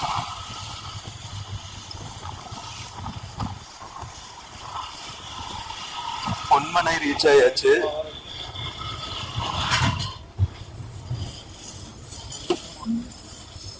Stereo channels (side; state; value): both; identical; correlation 1.00